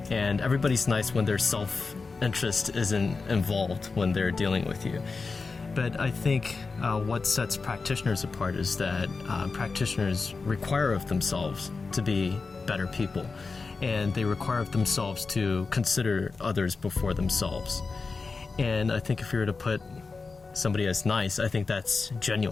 and everybody's nice when their self-interest isn't involved when they're dealing with you. But I think what sets practitioners apart is that practitioners require of themselves to be better people. And they require of themselves to consider others before themselves. And I think if you were to put somebody as nice, I think that's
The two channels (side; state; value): right; quieter; 4.3 dB